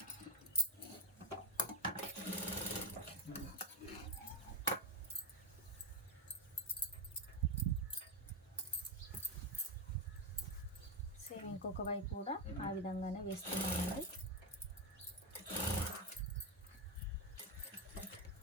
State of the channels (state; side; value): normal; both; correlation 0.07